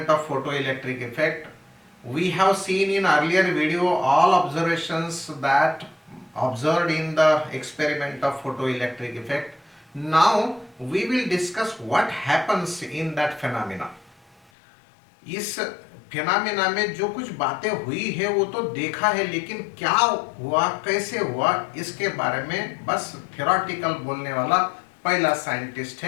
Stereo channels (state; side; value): drops out; right; at 14.4 s